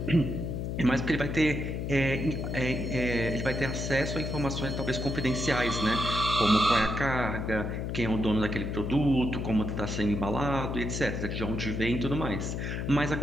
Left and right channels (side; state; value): left; noise; hum, 3 dB below the sound